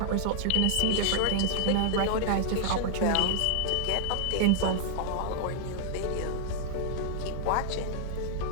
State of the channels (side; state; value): both; different; correlation -0.01